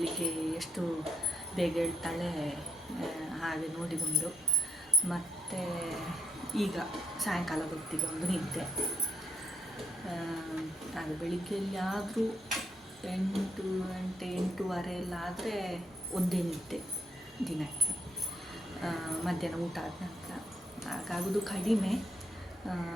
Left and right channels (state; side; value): normal; both; correlation 0.78